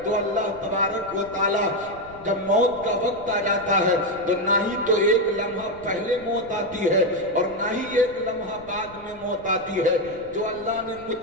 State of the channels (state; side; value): noise; left; rumble, 22 dB below the sound